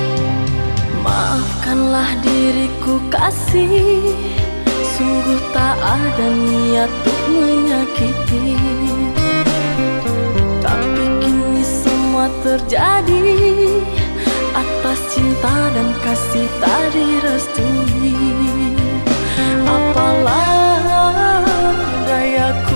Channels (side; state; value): both; inverted; correlation -1.00